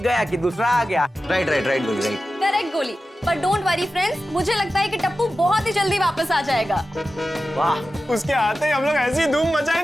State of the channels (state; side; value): normal; both; correlation 0.93